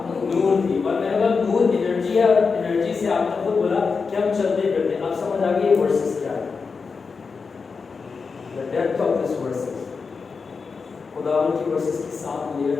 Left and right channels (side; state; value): right; quieter; 5.0 dB